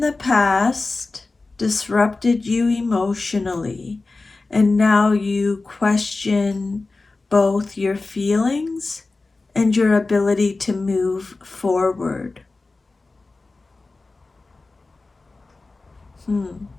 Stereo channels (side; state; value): right; quieter; 3.5 dB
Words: past disrupted you emotionally, and now you question both your feelings and your ability to move forward.